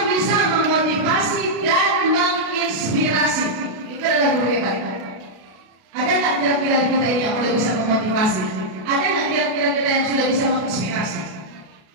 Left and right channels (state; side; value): late; left; 33 ms